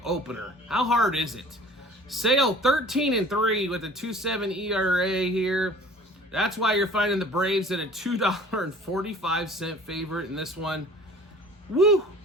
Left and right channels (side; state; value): both; normal; correlation 0.47